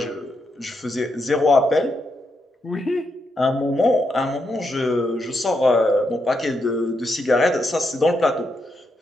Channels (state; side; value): normal; both; correlation 0.82